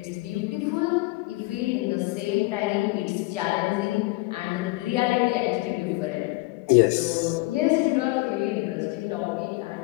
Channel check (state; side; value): quieter; right; 22.6 dB